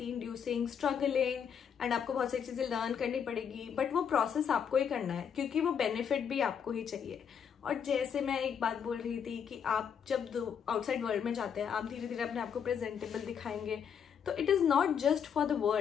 inducing, struggling, and आपको बहुत सारी चीजें लर्न करनी पड़ेगी, बट वो प्रोसेस आपको ही करना है क्योंकि वो बेनिफिट भी आपको ही चाहिए. और जैसे मैं एक बात बोल रही थी कि आप जब आउटसाइड वर्ल्ड में जाते हैं आप धीरे धीरे अपने आप को प्रेजेंटेबल दिखाएंगे, तो it is not just for the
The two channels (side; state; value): right; quieter; 7.6 dB